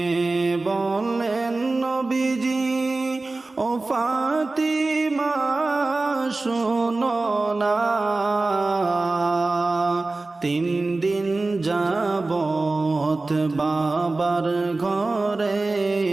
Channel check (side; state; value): left; quieter; 3.3 dB